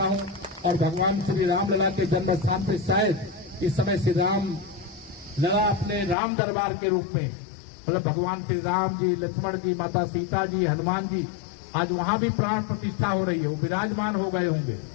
हूँ और भगवान श्री रामलला के जन्म स्थान पर शायद इस समय श्री राम लला अपने राम दरबार के रूप में, मतलब भगवान श्री राम जी, लक्ष्मण जी, माता सीता जी, हनुमान जी, आज वहां भी प्राण प्रतिष्ठा हो रही है, वो विराजमान हो गए होंगे।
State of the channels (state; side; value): drops out; right; at 6.2 s